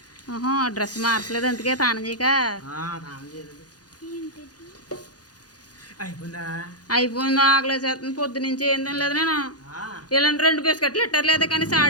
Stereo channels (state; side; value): late; right; 0.69 ms